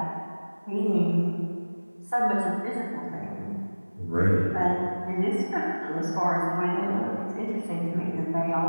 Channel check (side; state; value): both; inverted; correlation -1.00